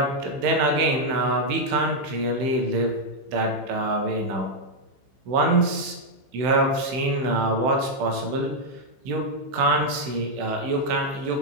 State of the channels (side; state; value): left; late; 15 ms